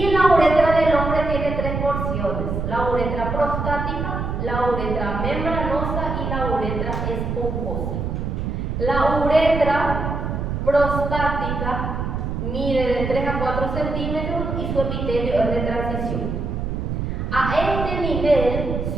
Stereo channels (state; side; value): noise; right; rumble, 3 dB below the sound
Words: la uretra del hombre tiene 3 porciones: la uretra prostática, la uretra membranosa y la uretra esponjosa. La uretra prostática mide de 3 a 4 centímetros y su epitelio es de transición. A este nivel